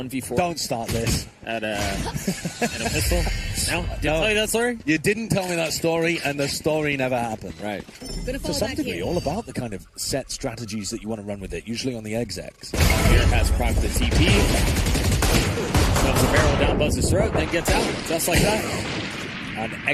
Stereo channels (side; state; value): both; identical; correlation 1.00